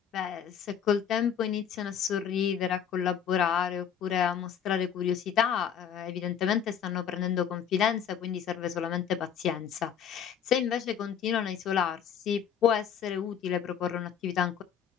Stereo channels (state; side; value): quieter; right; 8.3 dB